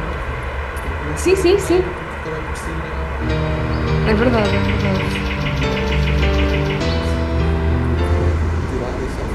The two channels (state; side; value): identical; both; correlation 1.00